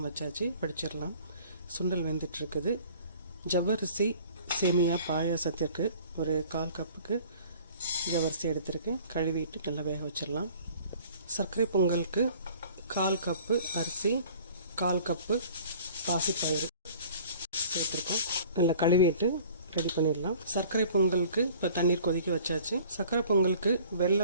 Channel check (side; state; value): both; inverted; correlation -0.50